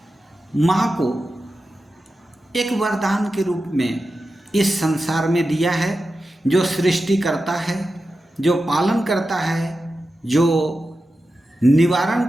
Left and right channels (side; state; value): both; normal; correlation 0.92